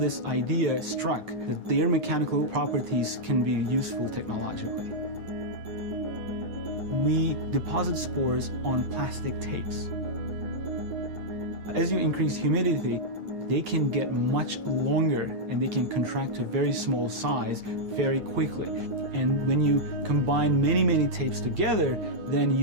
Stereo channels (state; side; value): late; left; 9.6 ms